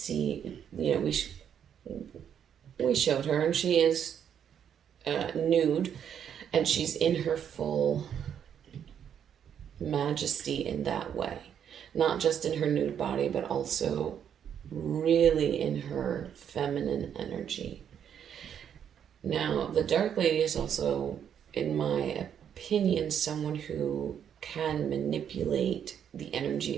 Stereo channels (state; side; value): quieter; left; 8.7 dB